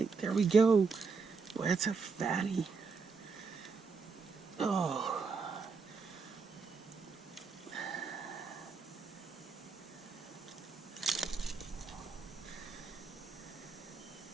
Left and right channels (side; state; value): left; quieter; 4.9 dB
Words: there we go. Boy, that's a fatty. Oh.